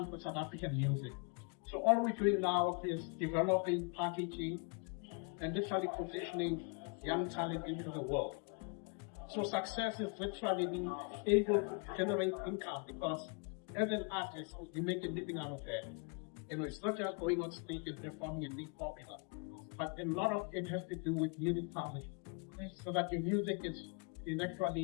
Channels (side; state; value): right; quieter; 35.8 dB